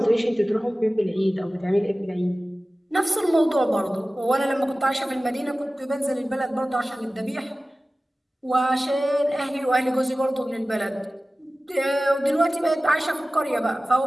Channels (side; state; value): both; normal; correlation 0.96